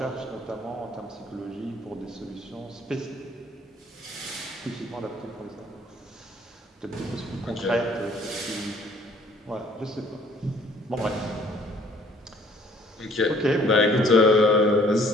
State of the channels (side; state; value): both; normal; correlation 0.59